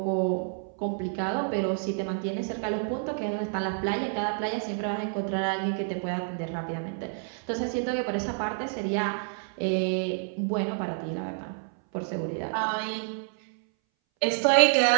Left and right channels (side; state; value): left; silent; 59 dB below the other